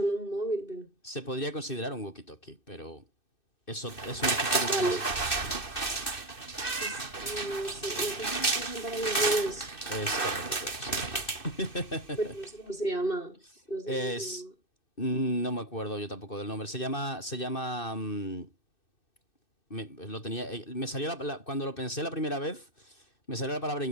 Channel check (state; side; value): late; right; 2.6 ms